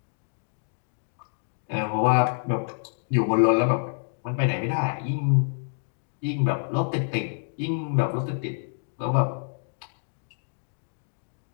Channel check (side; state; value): right; silent; digital silence